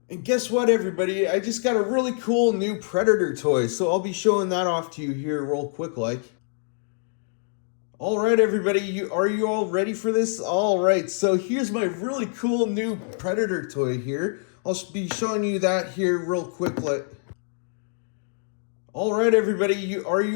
And guess what, everybody? I just got a really cool new Predator toy, so I'll be showing that off to you here real quick like. All right, everybody, are you all ready for this? All right, so here's my really cool new Predator toy here. I'll be showing you that here real quick like. All right, everybody, are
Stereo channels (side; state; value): right; silent; digital silence